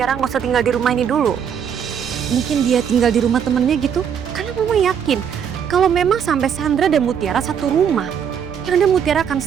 nggak usah tinggal di rumah ini dulu? Mungkin dia tinggal di rumah temennya gitu? Karena Mama yakin kalau memang sampai Sandra dan Mutiara satu rumah, yang ada Mutiara akan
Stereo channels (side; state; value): left; quieter; 7.9 dB